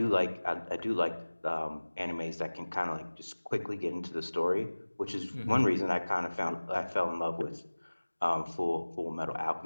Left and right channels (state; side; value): inverted; both; correlation -1.00